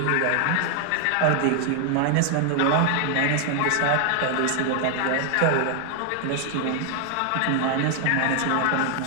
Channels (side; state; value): both; different; correlation 0.00